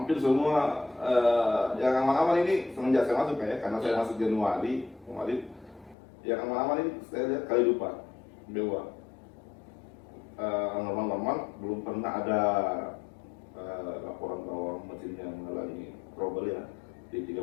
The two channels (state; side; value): drops out; right; at 6.0 s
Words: semua yang aman-aman ini semenjak saya masuk ya, karena saya masuk Januari kemarin, yang aman-aman ini saya lihat kali lupa Dewa. Normal-normal belum pernah ada laporan bahwa mesinnya mengalami trouble ya di